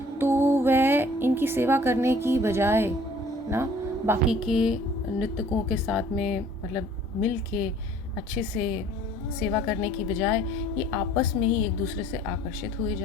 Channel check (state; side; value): normal; both; correlation 0.54